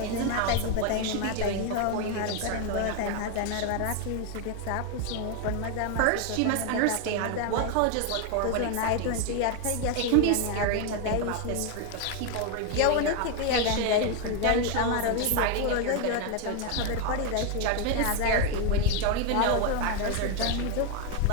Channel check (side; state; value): both; different; correlation 0.01